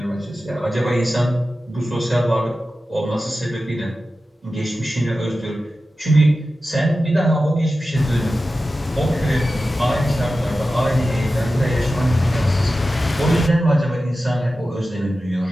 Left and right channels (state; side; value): normal; both; correlation 0.93